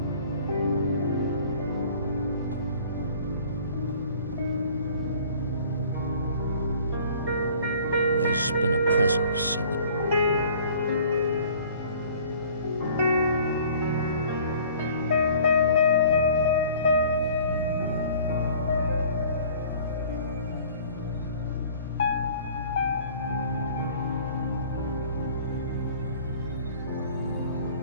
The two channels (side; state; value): both; inverted; correlation -0.50